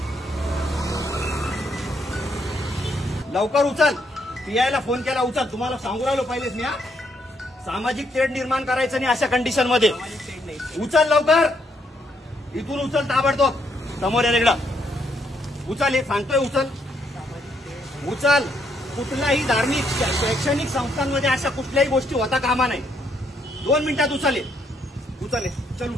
लवकर उचल. PI फोन केला, उचल. तुम्हाला सांगू राहिलो पहिलेच मी. सामाजिक तेढ निर्माण करायचं नाही अशा कंडिशन मध्ये. उचल लवकर, इथून उचल ताबडतोब. समोर या इकडं उचल. हे सांगतोय उचल. कुठल्याही धार्मिक शैक्षणिक संस्थांमध्ये अशा कुठल्याही गोष्टी होता कामा नाही. 2 मिनिटात उचल. चल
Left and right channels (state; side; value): normal; both; correlation 0.74